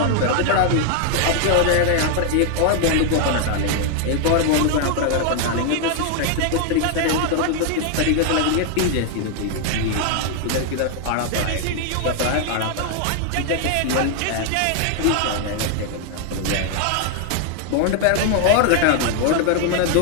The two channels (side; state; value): both; different; correlation 0.00